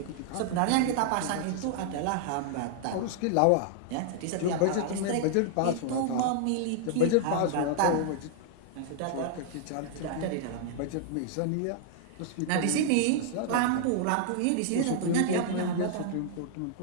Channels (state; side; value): different; both; correlation -0.01